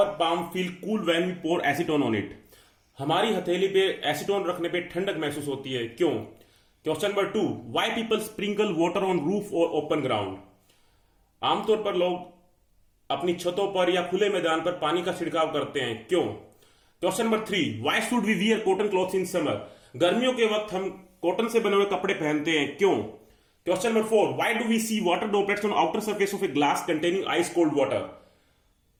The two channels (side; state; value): both; identical; correlation 1.00